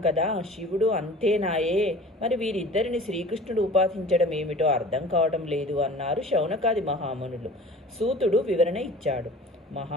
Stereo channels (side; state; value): both; normal; correlation 0.43